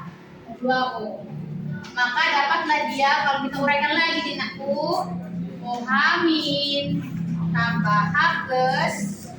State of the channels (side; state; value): both; identical; correlation 1.00